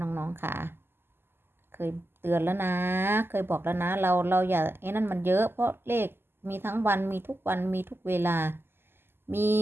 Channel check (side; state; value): left; late; 0.11 ms